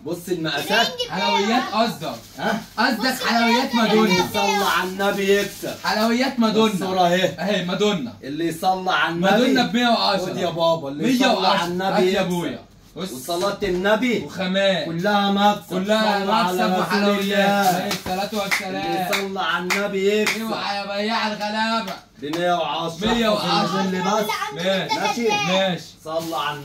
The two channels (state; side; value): identical; both; correlation 1.00